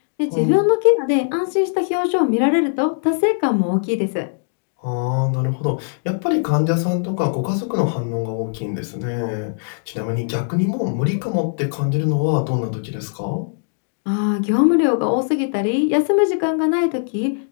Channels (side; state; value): right; silent; digital silence